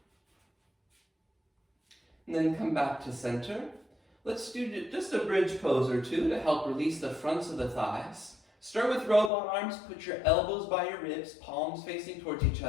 And then come back to center. Let's do just a bridge pose or two to help release the fronts of the thighs. Start with robot arms, put your elbows by your ribs, palms facing towards each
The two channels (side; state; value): right; drops out; at 9.3 s